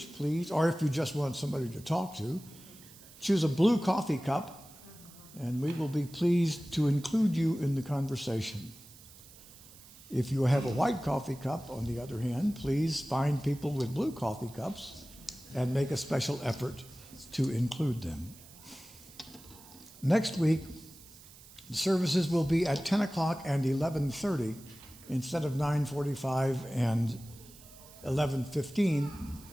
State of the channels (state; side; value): noise; right; hiss, 21 dB below the sound